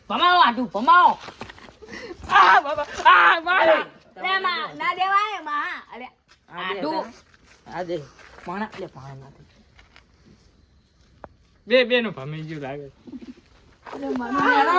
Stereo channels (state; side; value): identical; both; correlation 1.00